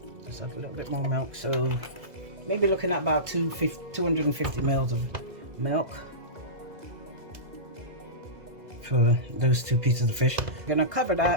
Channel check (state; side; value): late; left; 2.0 ms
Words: just add a little bit more milk, so maybe looking at about 250 mils of milk for those 2 pieces of fish. I'm gonna cover